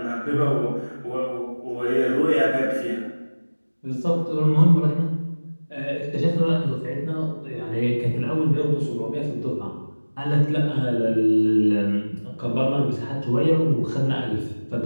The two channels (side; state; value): both; inverted; correlation -1.00